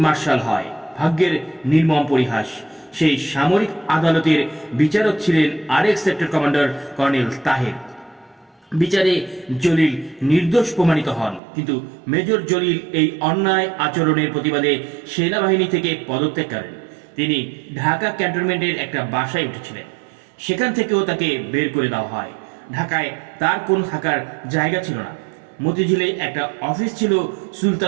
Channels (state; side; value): drops out; left; at 11.4 s